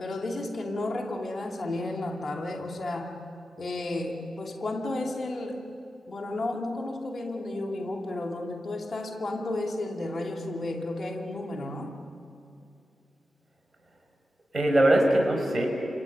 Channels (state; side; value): normal; both; correlation 0.91